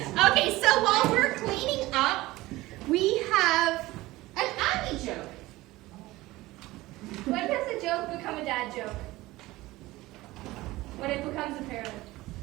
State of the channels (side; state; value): left; quieter; 18.7 dB